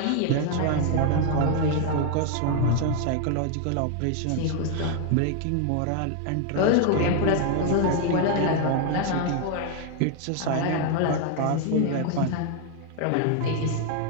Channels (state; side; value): different; both; correlation 0.01